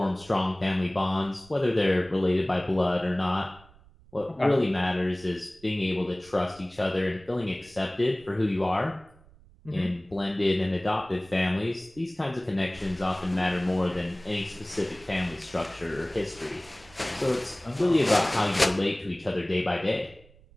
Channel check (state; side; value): noise; right; rumble, 26 dB below the sound